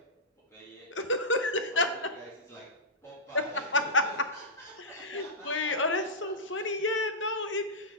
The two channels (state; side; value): normal; both; correlation -0.14